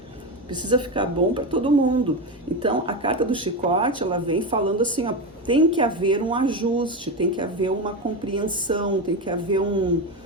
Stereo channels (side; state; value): both; normal; correlation 0.16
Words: Precisa ficar bom para todo mundo. Então, a carta do chicote, ela vem falando assim, ó, tem que haver um ajuste, tem que haver uma compreensão, tem que haver um